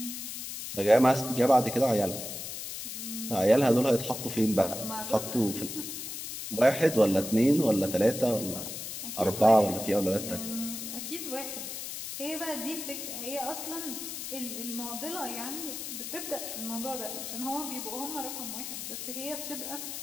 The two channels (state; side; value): noise; left; hiss, 7 dB below the sound